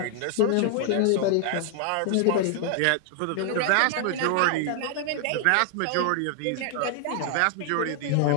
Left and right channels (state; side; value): different; both; correlation 0.00